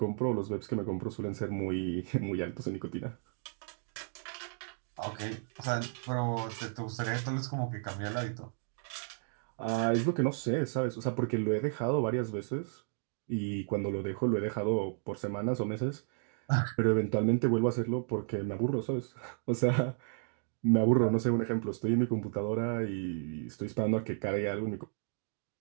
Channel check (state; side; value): silent; left; 56 dB below the other